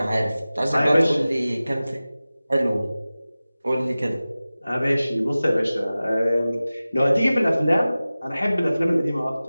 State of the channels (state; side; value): inverted; both; correlation -0.97